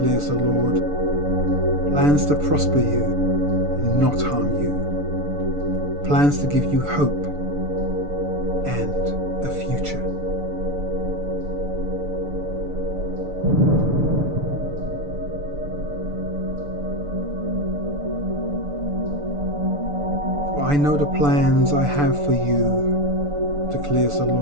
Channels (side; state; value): left; late; 6.9 ms